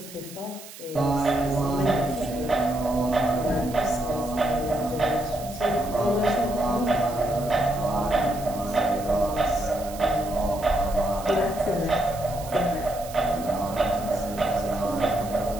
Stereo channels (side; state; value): right; noise; hiss, 16 dB below the sound